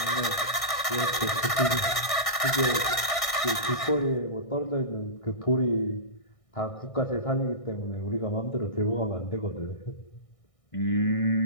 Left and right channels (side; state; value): right; late; 1.6 ms